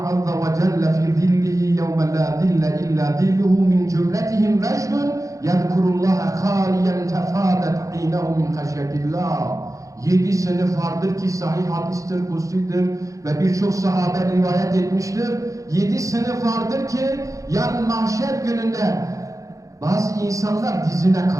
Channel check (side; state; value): left; late; 0.16 ms